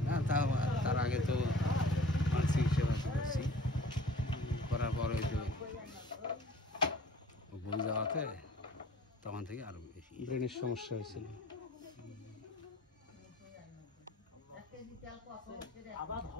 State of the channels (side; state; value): both; normal; correlation 0.50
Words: না, তার আগে তো মানসিক সেবা করছি, করার পর ওই তো ভুল যাওয়াতে তখন থেকে আরো বেশি ব্রেনের সমস্যা হয়েছিল।